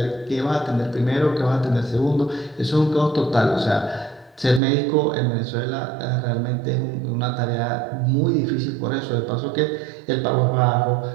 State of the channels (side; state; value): left; drops out; at 4.6 s